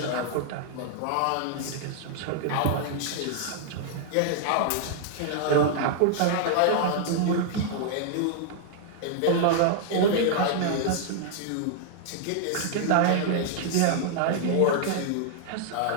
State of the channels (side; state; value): both; different; correlation -0.01